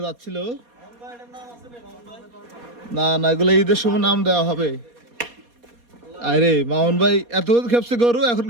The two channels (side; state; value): left; late; 4.2 ms